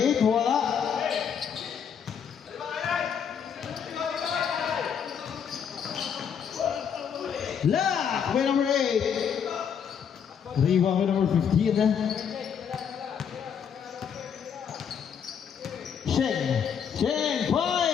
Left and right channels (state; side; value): quieter; right; 7.6 dB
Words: wala. Lock by number 8. Rebound by number 15. Sheng,